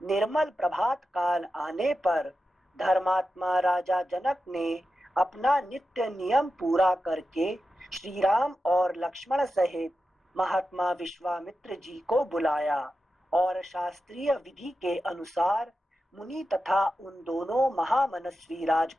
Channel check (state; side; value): normal; both; correlation 0.91